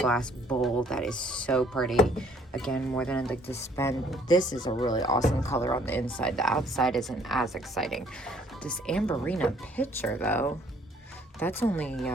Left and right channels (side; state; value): both; normal; correlation 0.61